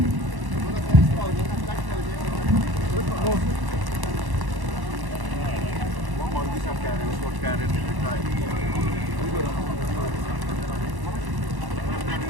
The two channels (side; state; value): left; late; 1.1 ms